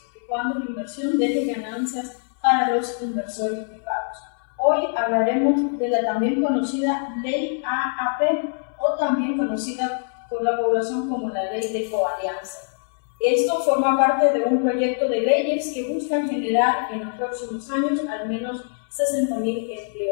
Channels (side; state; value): right; silent; 61 dB below the other